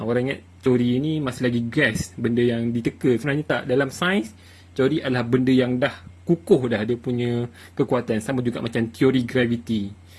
ingat teori ni masih lagi guess, benda yang diteka. Sebenarnya tak. Dalam sains, teori adalah benda yang dah kukuh dah dia punya kekuatan. Sama juga macam teori gravity.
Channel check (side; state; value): both; identical; correlation 1.00